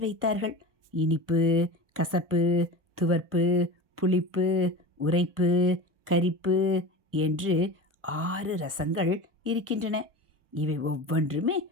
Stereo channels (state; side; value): late; left; 1.0 ms